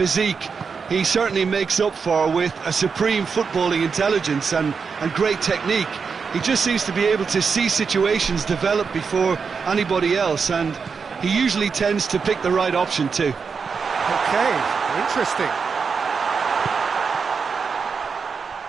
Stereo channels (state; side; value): quieter; left; 5.5 dB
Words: he certainly makes up for with a supreme footballing intelligence and great technique. He just seems to be able to see situations develop before anybody else, and he usually tends to pick the right option too. Okay, interesting.